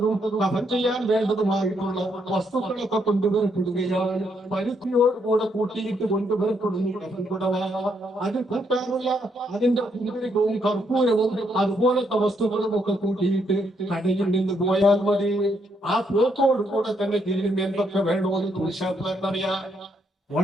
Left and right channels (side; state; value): both; normal; correlation 0.75